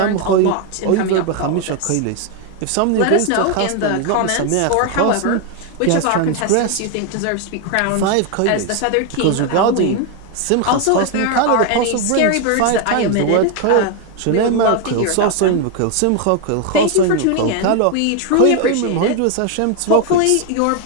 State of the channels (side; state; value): both; different; correlation 0.01